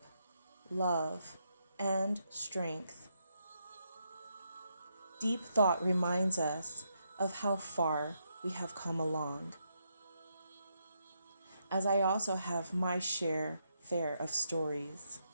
love, and strength. Deep thought reminds us of how far we have come along, as I also have my fair of stories.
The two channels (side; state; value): both; inverted; correlation -0.80